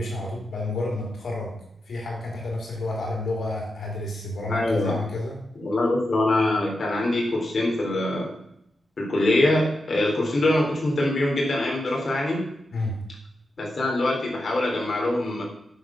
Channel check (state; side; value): normal; both; correlation 0.88